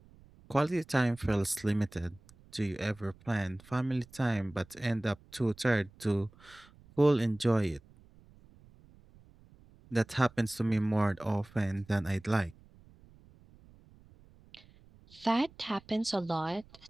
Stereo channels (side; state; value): right; noise; rumble, 25 dB below the sound